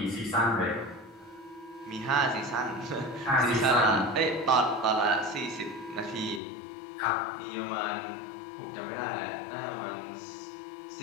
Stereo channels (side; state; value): right; drops out; at 6.4 s